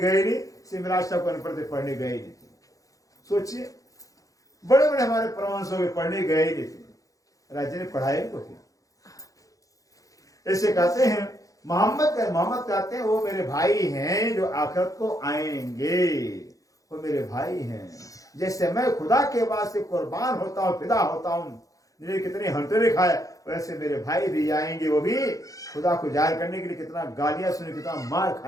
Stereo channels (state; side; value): late; right; 0.17 ms